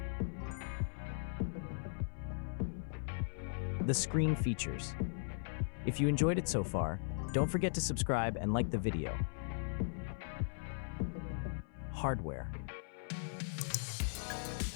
The screen features. If you enjoyed it so far, don't forget to subscribe and like the video. Hardware.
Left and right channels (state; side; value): silent; right; 52 dB below the other